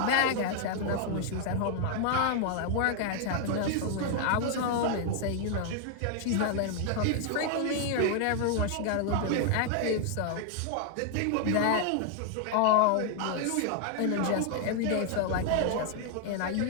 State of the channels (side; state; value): both; different; correlation 0.00